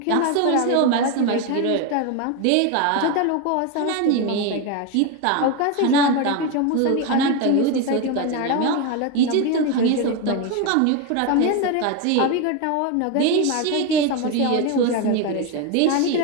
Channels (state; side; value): different; both; correlation 0.02